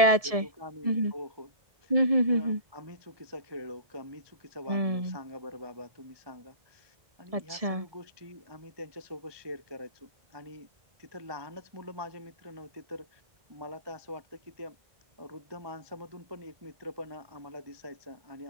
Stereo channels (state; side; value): late; left; 1.7 ms